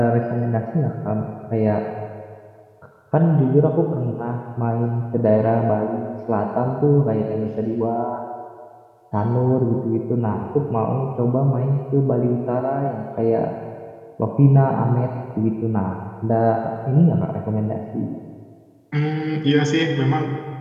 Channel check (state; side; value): identical; both; correlation 1.00